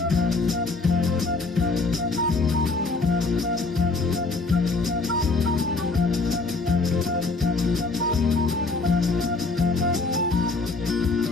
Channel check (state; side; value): quieter; right; 3.6 dB